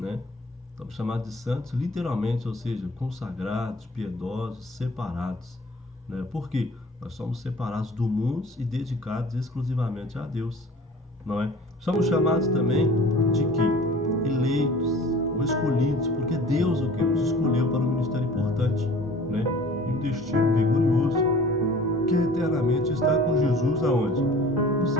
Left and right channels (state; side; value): normal; both; correlation 0.46